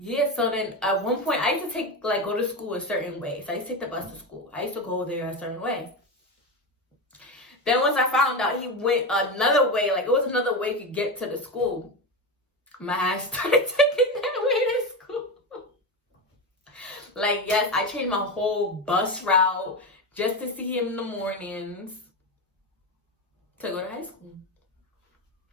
so then at one point I used to go to school a certain way. So I used to take the bus to school. I used to go there a certain way. Then once I found out he went another way, like it was another way to get to the school, my ass started taking that way to school. Like, yes, I changed my whole bus route just to see him in the mornings to go to high school.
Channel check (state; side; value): normal; both; correlation 0.18